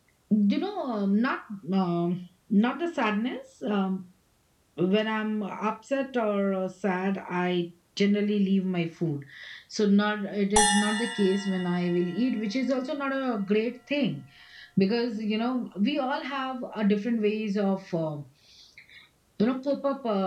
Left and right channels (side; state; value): both; identical; correlation 1.00